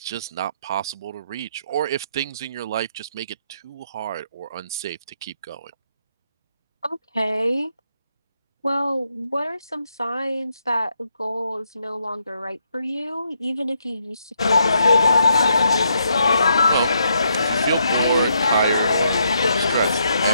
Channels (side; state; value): both; inverted; correlation -0.77